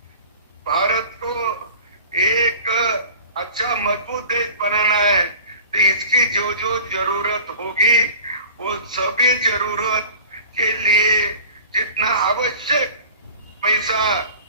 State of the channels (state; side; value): inverted; both; correlation -0.42